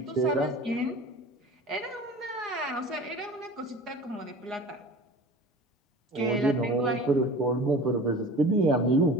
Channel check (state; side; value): normal; both; correlation 0.39